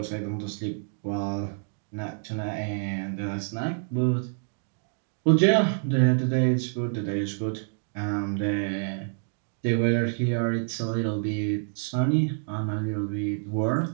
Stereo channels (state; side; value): silent; left; digital silence